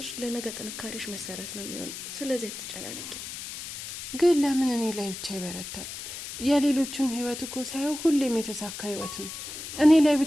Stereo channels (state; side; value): noise; left; hiss, 9 dB below the sound